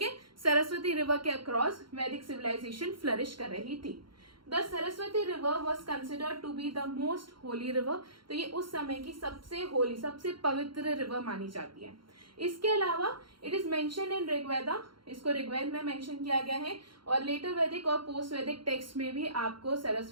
है, सरस्वती रिवर के अक्रॉस वैदिक सिविलाइजेशन फ्लरिश कर रही थी। The Saraswati river was considered to be the most holy river. तो ये उस समय की सबसे होली, सबसे पवित्र रिवर मानी जाती है। इसके अलावा it is mention in Rigveda, इसको ऋग्वेद में मेंशन किया गया है, और लेटर वैदिक और पोस्ट वैदिक टेक्स्ट में भी आपको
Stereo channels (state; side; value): late; left; 0.73 ms